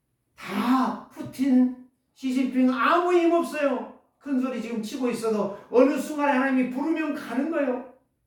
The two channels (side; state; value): both; identical; correlation 1.00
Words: 다 푸틴, 시진핑 아무 힘없어요. 큰소리 지금 치고 있어도 어느 순간에 하나님이 부르면 가는 거예요.